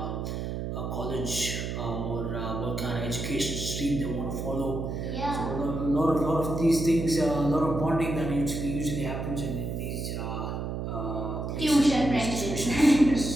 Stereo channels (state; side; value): noise; right; hum, 4 dB below the sound